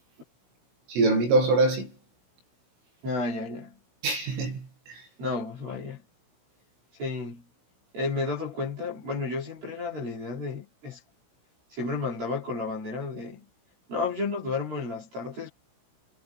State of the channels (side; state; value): left; late; 16 ms